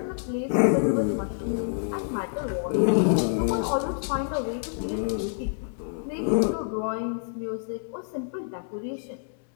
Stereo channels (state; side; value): silent; right; digital silence